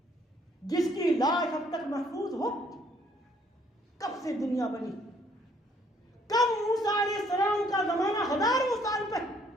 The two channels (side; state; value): both; normal; correlation 0.64